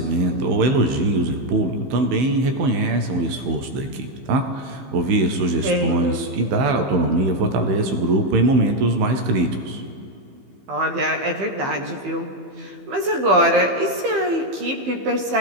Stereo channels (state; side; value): late; left; 15 ms